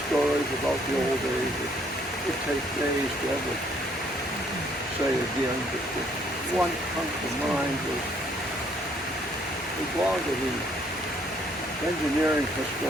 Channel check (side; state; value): both; normal; correlation 0.66